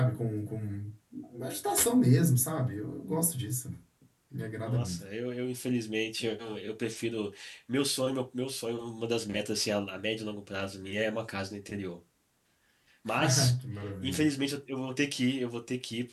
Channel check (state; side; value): identical; both; correlation 1.00